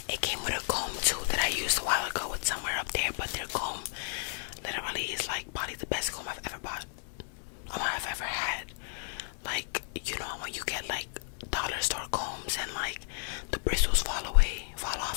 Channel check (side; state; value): right; silent; 56 dB below the other